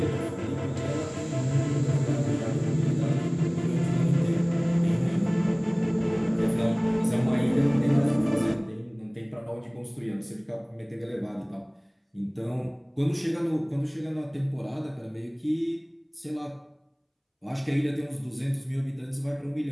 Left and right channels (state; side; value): identical; both; correlation 1.00